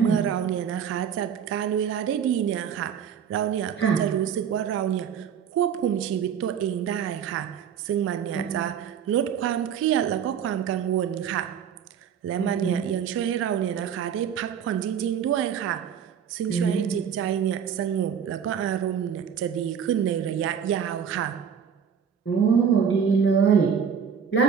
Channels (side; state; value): left; quieter; 7.8 dB